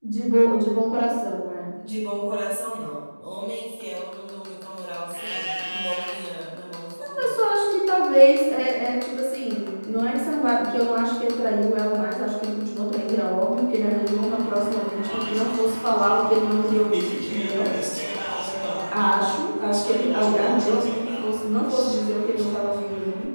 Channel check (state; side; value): inverted; both; correlation -1.00